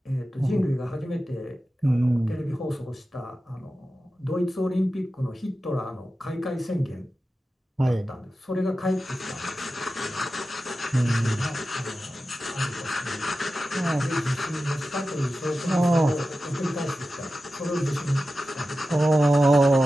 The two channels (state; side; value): normal; both; correlation 0.93